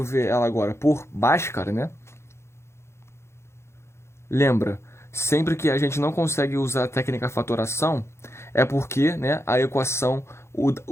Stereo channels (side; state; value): right; late; 0.13 ms